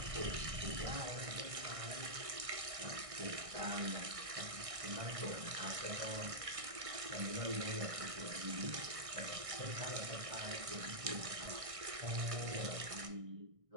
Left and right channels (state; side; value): late; left; 1.6 ms